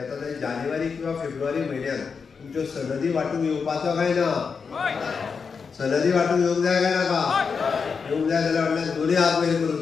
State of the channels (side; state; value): right; quieter; 5.6 dB